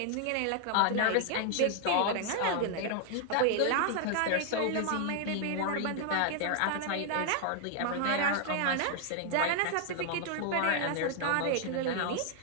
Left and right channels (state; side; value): different; both; correlation 0.00